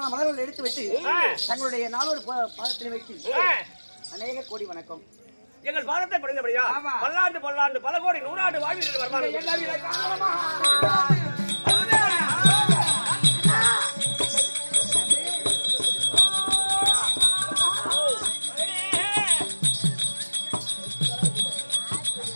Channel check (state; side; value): inverted; both; correlation -1.00